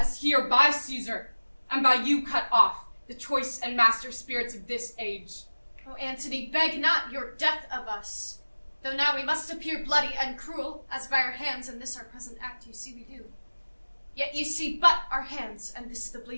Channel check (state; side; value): inverted; both; correlation -1.00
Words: here by Caesar, and by you cut off, the choice and master spirits of this age. O Antony, beg not your death of us. Though now we must appear bloody and cruel, as by our hands in this our present act you see we do. Yet you see but our hands, and this the